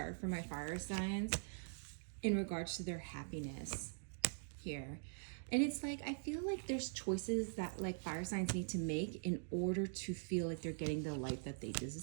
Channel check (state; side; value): silent; left; digital silence